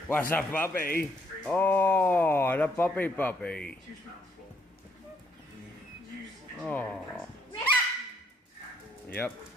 What's up, puppy? Oh, the puppy. Oh. Yep.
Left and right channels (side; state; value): both; normal; correlation 0.70